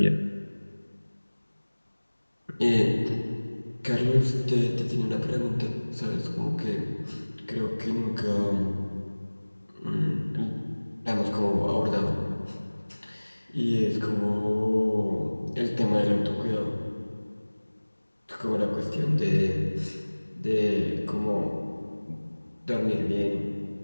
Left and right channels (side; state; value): both; inverted; correlation -1.00